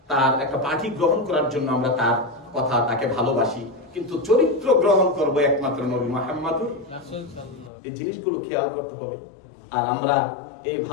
তার একটা পার্টি গ্রহণ করার জন্য আমরা তার কথা, তাকে ভালোবাসি, কিন্তু চরিত্র গ্রহণ করব একমাত্র নবী মুহাম্মদুর রাসূলুল্লাহ। এই জিনিসগুলো খেয়াল করতে হবে। আর আমরা এই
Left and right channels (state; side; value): drops out; right; at 7.7 s